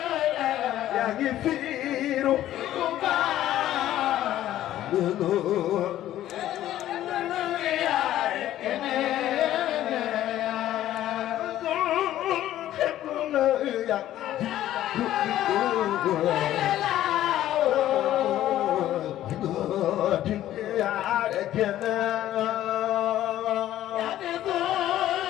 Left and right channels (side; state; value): right; quieter; 13.1 dB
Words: yaa ngi fiiru